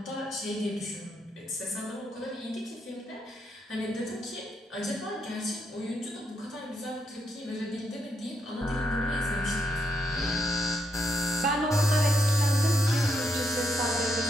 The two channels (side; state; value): both; normal; correlation 0.79